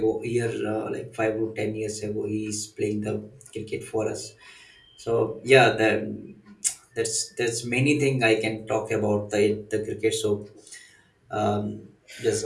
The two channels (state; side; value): identical; both; correlation 1.00